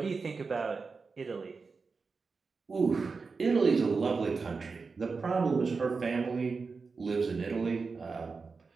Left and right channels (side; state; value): left; quieter; 4.6 dB